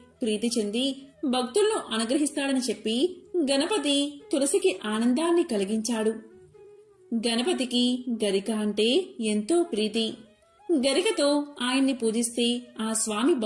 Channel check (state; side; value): identical; both; correlation 1.00